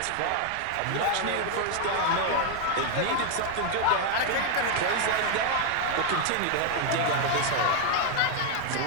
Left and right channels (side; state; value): both; different; correlation 0.01